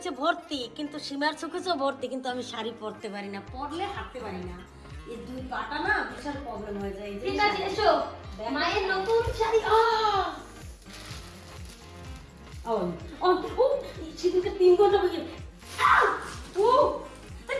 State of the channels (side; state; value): both; identical; correlation 1.00